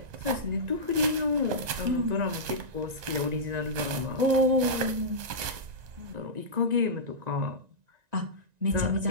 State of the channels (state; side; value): late; left; 1.9 ms